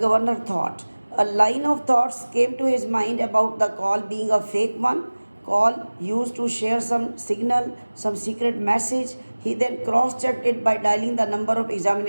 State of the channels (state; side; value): inverted; both; correlation -1.00